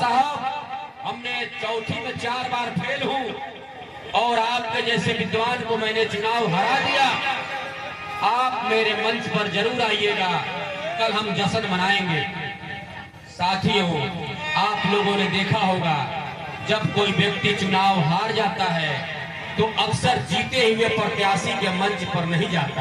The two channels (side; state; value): both; identical; correlation 1.00